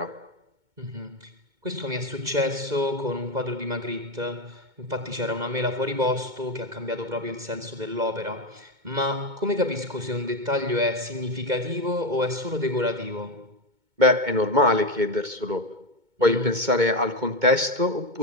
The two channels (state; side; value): late; left; 2.2 ms